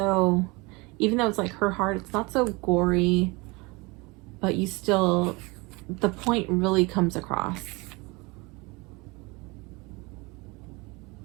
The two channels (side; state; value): left; quieter; 25.8 dB